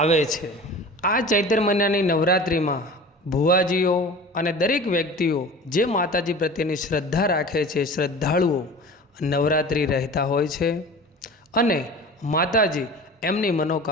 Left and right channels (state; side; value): normal; both; correlation 0.38